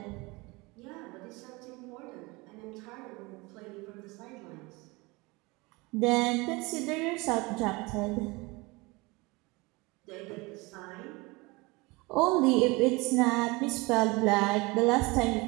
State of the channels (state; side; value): quieter; left; 24.7 dB